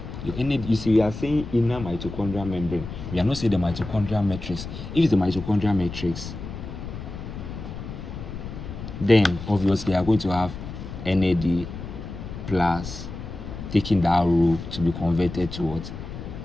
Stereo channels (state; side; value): noise; left; rumble, 9 dB below the sound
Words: Your NAD, you see, we are saying inner mitochondrial membrane. We are not saying the mitochondrial matrix. If it's the mitochondrial matrix, then obviously you are going to have NAD plus taking that row to be converted to what?